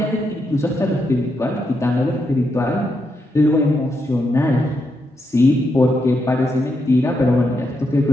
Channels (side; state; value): both; normal; correlation 0.82